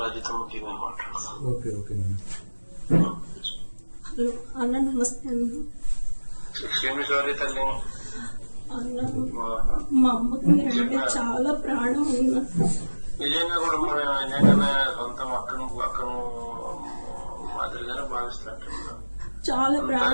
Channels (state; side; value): inverted; both; correlation -1.00